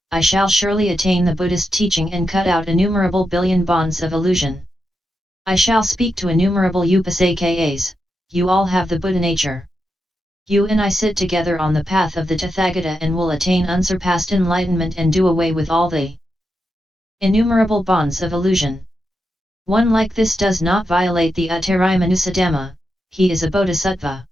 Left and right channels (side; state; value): both; normal; correlation 0.86